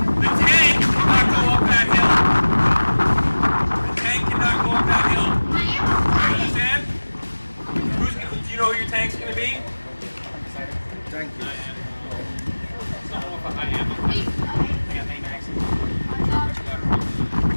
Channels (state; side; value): inverted; both; correlation -1.00